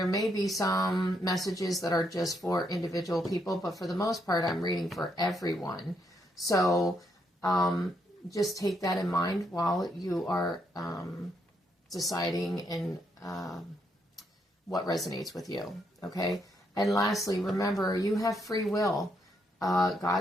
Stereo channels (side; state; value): both; normal; correlation 0.76